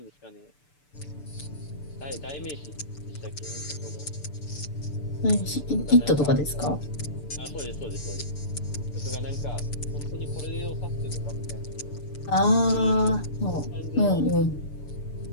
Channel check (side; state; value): right; late; 6.9 ms